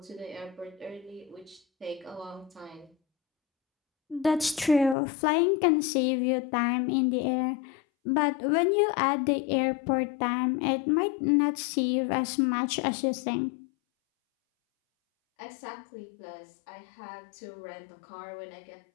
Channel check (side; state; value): right; drops out; at 5.0 s